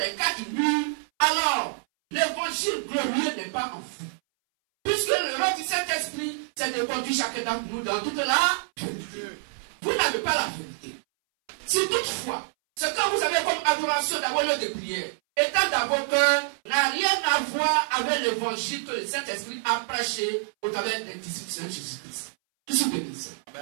quatre murs, alors l'évangile glorieux n'est pas en vous. Puisque le rôle du Saint-Esprit, c'est de conduire chacun d'entre nous dans toute la vérité. Vous n'avez pas la vérité. Si toutefois, ce que vous avez comme adoration d'avoir lieu de prière, étant dans vos cœurs, n'a rien à voir avec l'évangile que le Saint-Esprit a prêché au travers des disciples de Saint-Jésus-Christ. Qui se bénisse.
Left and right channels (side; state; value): left; silent; 60 dB below the other